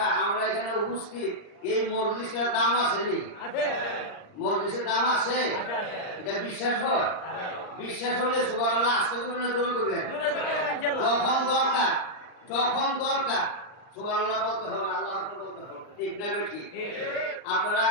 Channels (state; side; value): late; right; 39 ms